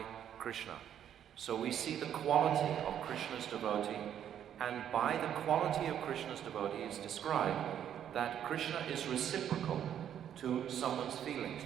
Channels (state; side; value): quieter; left; 9.8 dB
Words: Krishna. So we see the quality of Krishna's devotee, and by the quality of Krishna's devotee is described that Krishna is reciprocal to someone's feelings,